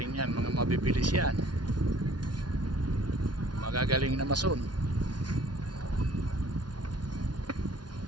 yan, mga mabibilis yan. Magagaling na mason.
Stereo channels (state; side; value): late; left; 0.70 ms